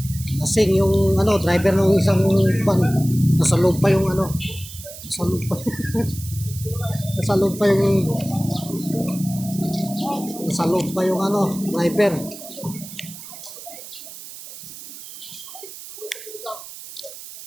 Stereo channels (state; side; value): noise; right; hiss, 14 dB below the sound